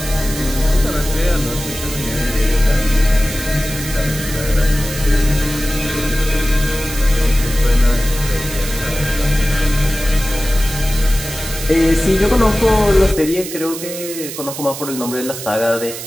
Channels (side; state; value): right; noise; hiss, 9 dB below the sound